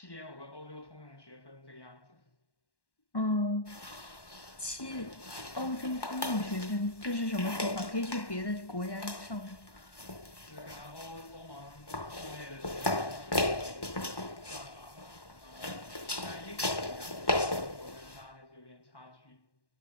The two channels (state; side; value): late; right; 1.1 ms